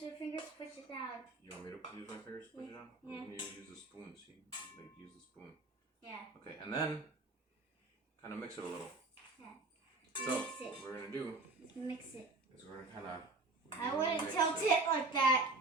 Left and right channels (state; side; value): quieter; left; 3.4 dB